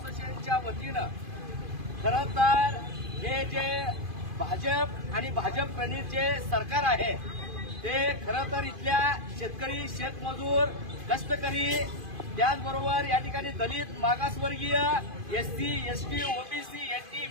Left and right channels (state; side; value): late; left; 2.5 ms